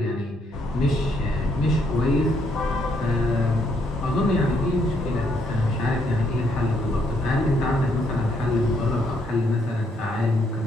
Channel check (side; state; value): both; normal; correlation 0.72